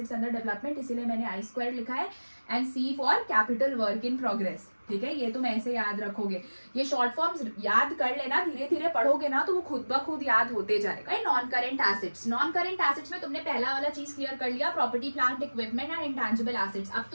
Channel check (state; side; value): inverted; both; correlation -1.00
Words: under development, इसीलिए मैंने I² लिखा है, and C for capital work in progress, ठीक है। ये तुम ऐसे याद रखोगे, ये शॉर्ट फॉर्म्स याद कर लेना, धीरे धीरे पढ़ोगे ना तो वो खुद ब खुद याद होते जाएगा। Non current assets, non current assets में तुमने पहला वाला चीज क्लियर कर लिया, property plant equipment and intangible assets. अब